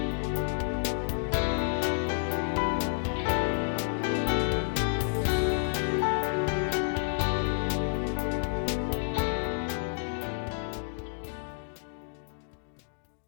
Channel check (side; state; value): right; silent; digital silence